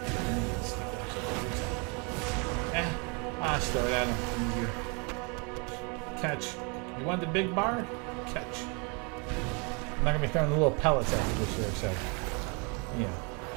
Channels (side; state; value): left; quieter; 33.1 dB